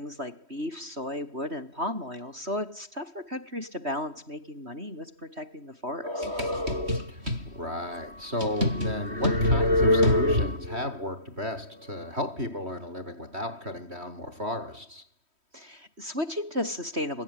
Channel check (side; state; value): left; late; 3.1 ms